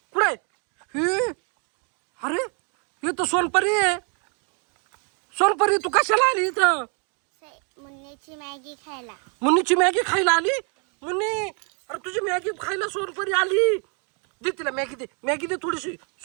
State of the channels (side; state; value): left; quieter; 38.0 dB